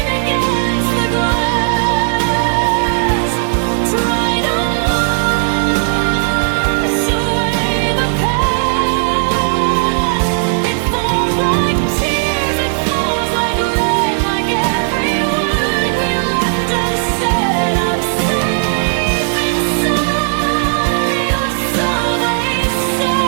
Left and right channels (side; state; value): left; silent; 70 dB below the other